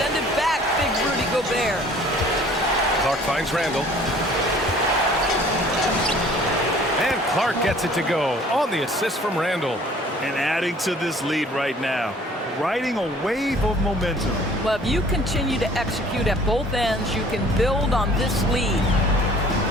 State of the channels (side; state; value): both; normal; correlation 0.53